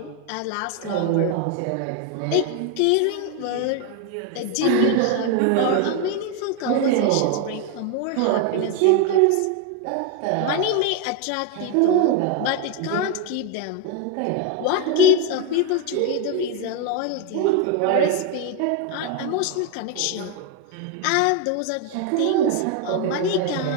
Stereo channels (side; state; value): both; different; correlation 0.02